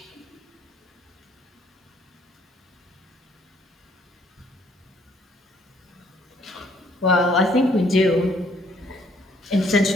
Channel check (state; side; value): normal; both; correlation 0.64